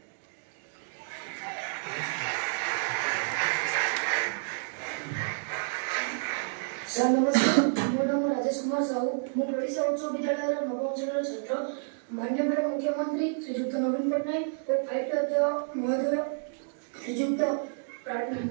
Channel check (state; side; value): silent; left; digital silence